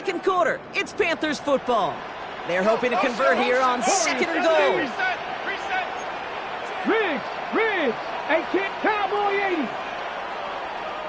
quarter. It's Panthers football. They're hoping to convert here on 2nd and goal. Riggs. Hey, kid, Cowboy 80.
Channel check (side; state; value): both; identical; correlation 1.00